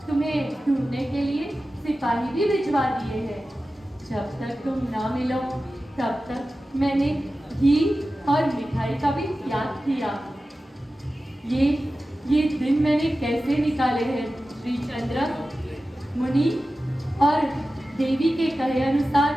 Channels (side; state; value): both; normal; correlation 0.94